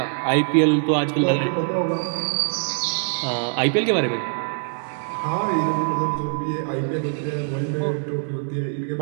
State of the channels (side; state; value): left; silent; 63 dB below the other